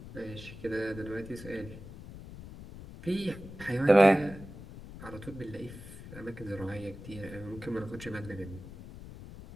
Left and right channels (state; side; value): noise; left; rumble, 14 dB below the sound